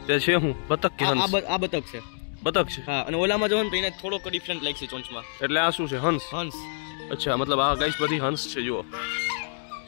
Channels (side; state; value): right; silent; digital silence